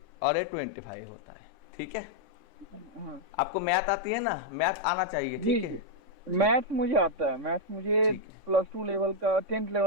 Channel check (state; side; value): late; left; 3.6 ms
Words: और ये 25 होता है, ठीक है। हाँ। आपको मैथ आती है ना, मैथ आना चाहिए, जी ठीक है। जी, मैथ्स मुझे आता है, मैथ्स मुझे ठीक है, +2 लेवल का, 10th